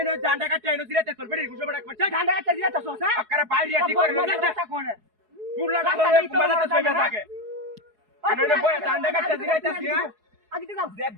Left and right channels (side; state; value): left; late; 4.7 ms